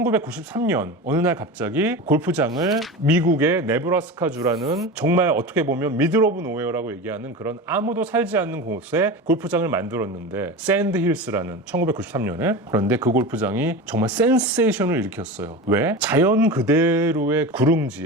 어느 날 갑자기 골프장을 미국의 네브라스카주라는 정말 어떻게 보면 미들 오브 노웨어라고 얘기하는 그런 아무도 살지 않는 곳에 골프장을 만들었는데 샌드힐스라는 1993년에. 그런데 그 골프장이 정말 센세이션을 일으켰어요. 왜? 자연 그대로의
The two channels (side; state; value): both; normal; correlation 0.27